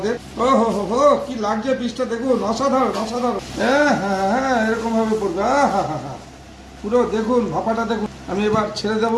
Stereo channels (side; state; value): both; identical; correlation 1.00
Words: ও হো হো হো, কি লাগছে পিসটা দেখুন, অসাধারণ অসাধারণ। হ্যাঁ হ্যাঁ হ্যাঁ, এরকম ভাবে পড়বে। হ্যাঁ হ্যাঁ হ্যাঁ, পুরো দেখুন ভাপাটা দেখুন। আমি এবার ছেড়ে